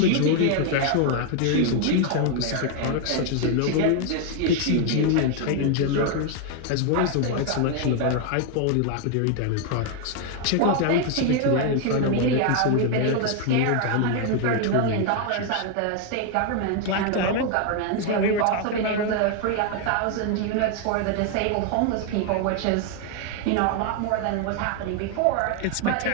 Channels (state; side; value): different; both; correlation 0.00